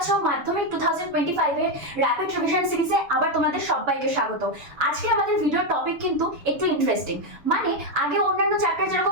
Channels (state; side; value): late; left; 7.0 ms